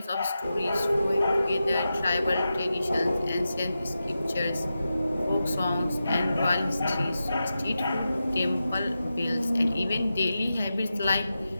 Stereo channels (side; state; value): both; inverted; correlation -0.91